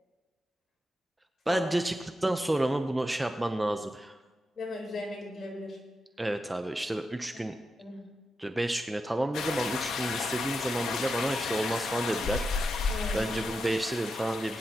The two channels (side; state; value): both; normal; correlation 0.87